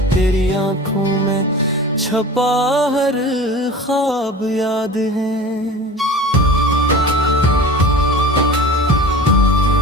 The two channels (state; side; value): normal; both; correlation 0.37